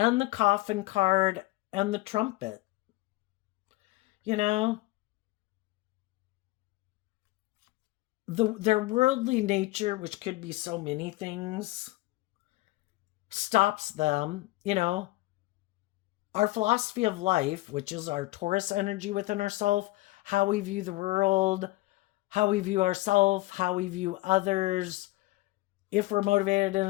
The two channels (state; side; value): quieter; right; 19.8 dB